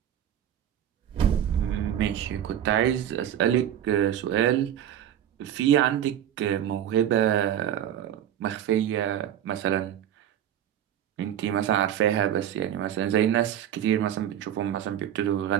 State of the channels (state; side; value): quieter; left; 10.5 dB